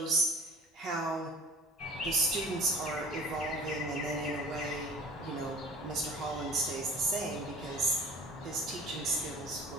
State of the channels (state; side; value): normal; both; correlation 0.44